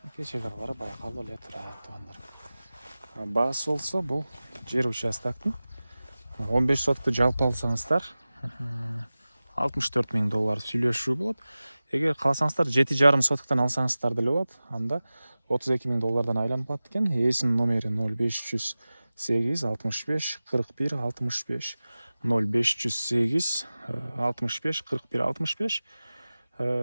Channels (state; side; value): inverted; both; correlation -0.97